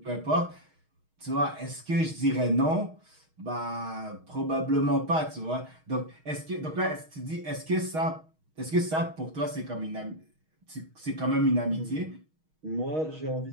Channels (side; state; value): left; late; 6.4 ms